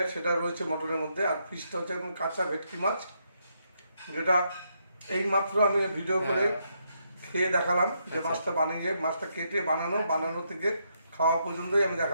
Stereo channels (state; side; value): inverted; both; correlation -0.78